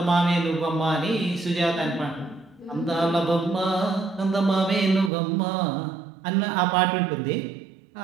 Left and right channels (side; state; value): left; drops out; at 5.1 s